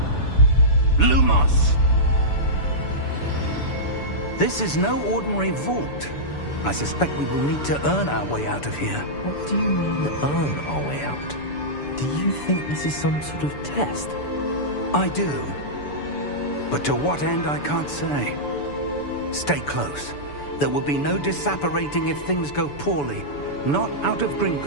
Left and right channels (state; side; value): late; right; 6.9 ms